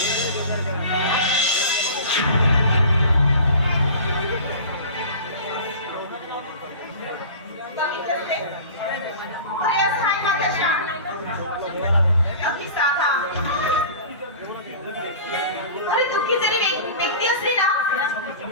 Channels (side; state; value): both; inverted; correlation -0.38